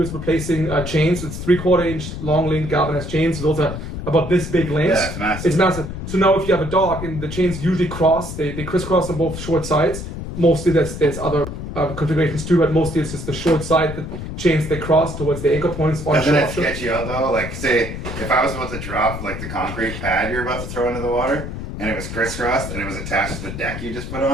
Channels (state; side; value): noise; left; rumble, 7 dB below the sound